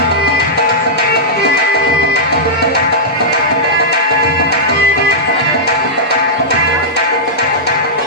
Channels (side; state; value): both; normal; correlation -0.12